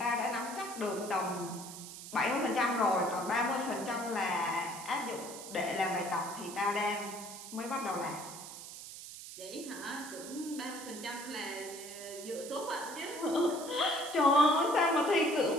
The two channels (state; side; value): noise; right; hiss, 12 dB below the sound